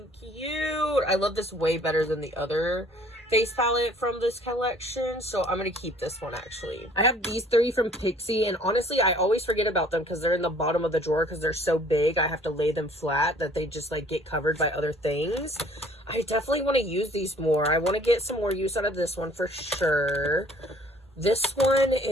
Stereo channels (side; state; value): both; normal; correlation 0.56